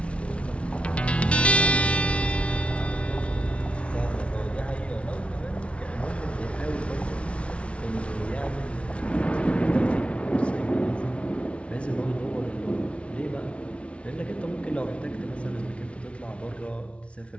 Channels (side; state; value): right; late; 0.061 ms